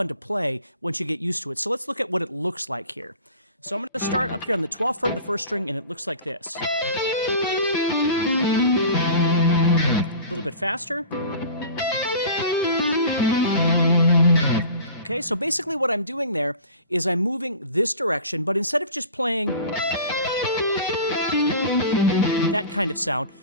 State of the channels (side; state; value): both; inverted; correlation -0.40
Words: to play once you get used to it. So let's look at what it looks like here. So I'm going to start up here on the 12th fret of the first string, and it looks like this. A little bit faster. Okay, so basically what I'm doing there is I'm moving this direction, but instead of just playing that kind of sound,